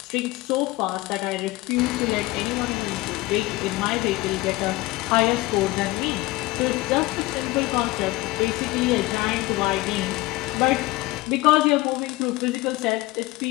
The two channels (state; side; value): quieter; right; 19.9 dB